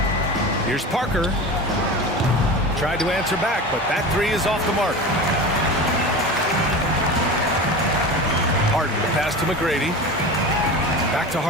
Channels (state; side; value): normal; both; correlation 0.30